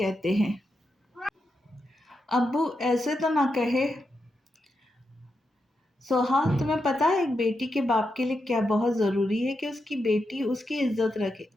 हैं, अब्बू ऐसे तो ना कहे। सोहा, तुम्हें पता है एक बेटी के बाप के लिए क्या बहुत ज़रूरी है कि उसकी बेटी उसकी इज्जत रखे,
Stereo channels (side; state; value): both; normal; correlation 0.86